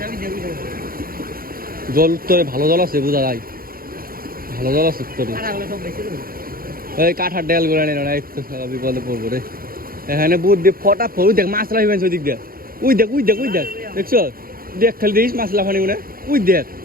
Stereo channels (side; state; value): left; late; 0.42 ms